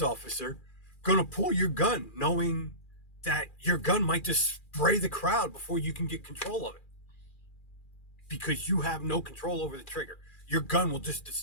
officer, going to pull your gun knowing that your gun might just spray the crowd before you can get control of it? Because you have no control over the trigger. Your gun will just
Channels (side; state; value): right; late; 2.4 ms